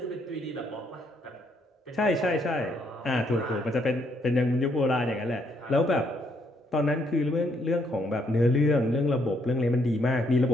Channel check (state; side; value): normal; both; correlation 0.72